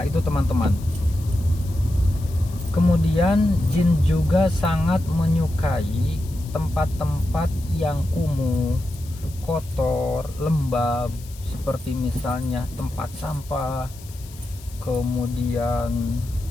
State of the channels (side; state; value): left; noise; hiss, 20 dB below the sound